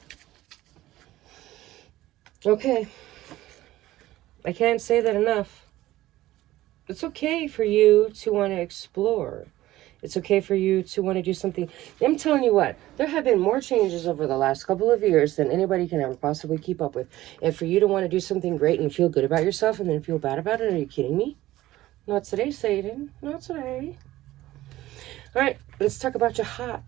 Okay. I can't say that enough. It's okay for you to want to explore. It's okay for you to want to do something. I'm telling you what, there have been more changes over the last couple of years than anybody can ever possibly keep up with. And for you to want to do something great and feel good about yourself and then feel bad about it, are you kidding me? Not today, Satan. Not today. All right, let's talk about your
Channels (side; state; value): left; quieter; 15.9 dB